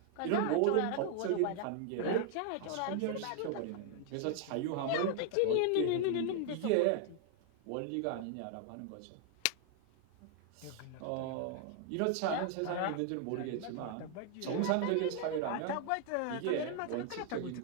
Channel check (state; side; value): different; both; correlation 0.00